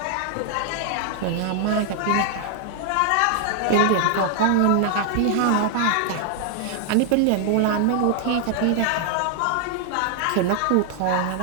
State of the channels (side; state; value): both; different; correlation 0.00